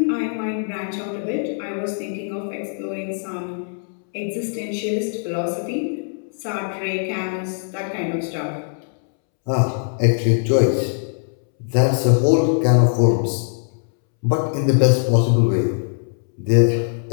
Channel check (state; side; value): silent; right; 65 dB below the other